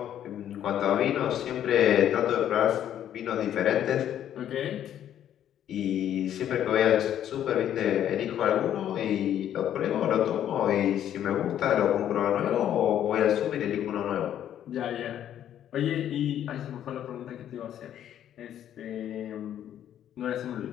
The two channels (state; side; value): quieter; right; 10.7 dB